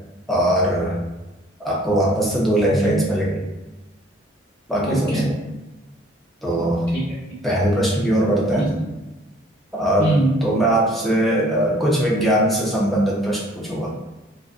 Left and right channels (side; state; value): both; normal; correlation 0.56